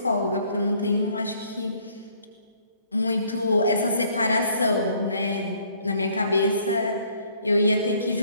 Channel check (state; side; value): inverted; both; correlation -0.62